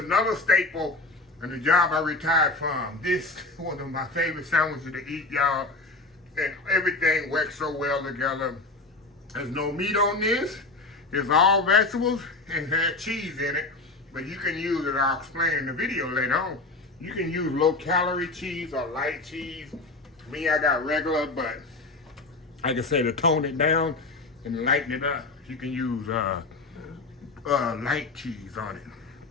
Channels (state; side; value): quieter; right; 3.3 dB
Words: staple in the job I retired from. This is one of my favorite sandwiches to eat, y'all. And everything works so well together. There's no meat on this. It's all vegetables and has cheese in it. But you can use it, I'll explain in the video later on. You can use low-calorie cheese or light cheese. Me, I got regular, but like I say, to tone it down and lighten it up, you can use light cheese on it.